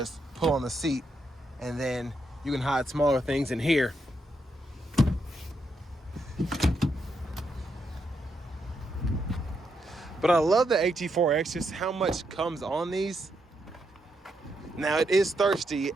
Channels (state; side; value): normal; both; correlation 0.80